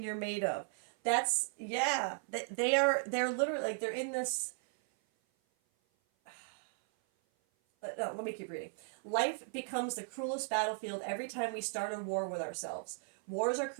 you're made of? That's, yeah. They're literally, like, they're in this. No, let me keep reading. Life becomes the cruelest battlefield every time we start a war with ourselves. Wars are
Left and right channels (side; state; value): left; silent; 54 dB below the other